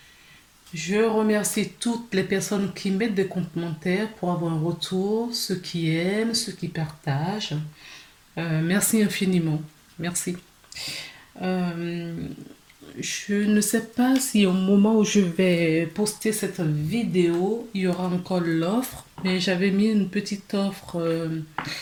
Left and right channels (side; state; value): both; identical; correlation 1.00